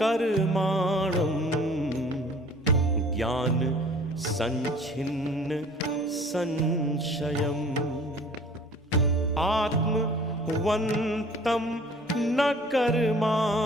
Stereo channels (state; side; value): normal; both; correlation 0.50